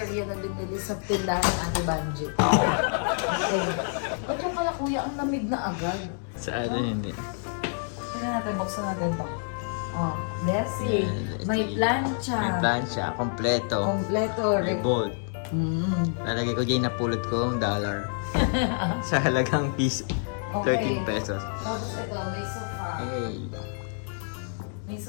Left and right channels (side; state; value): right; silent; 60 dB below the other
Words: na binili sa tindahan ng Ate Banji. Okay. Ba't yung pala kuya, ang lamig na agad? Sa ano hindi. Tingnan natin, buksan natin to. Oh, Bessie. May plancha. May plancha. Kompleto. Kompleto. May bolt. Mm. Lalagay ko dyan, napulot ko ang dollar. Sa halagang piso. 13 pesos. Tapos ito, may sofa. Hey. May